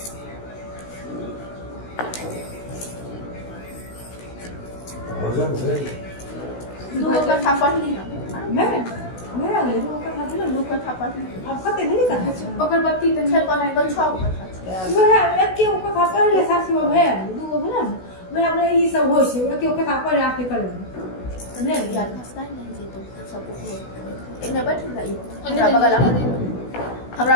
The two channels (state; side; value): late; right; 16 ms